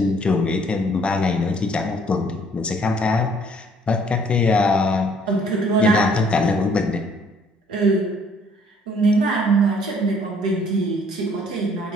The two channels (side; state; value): both; normal; correlation 0.61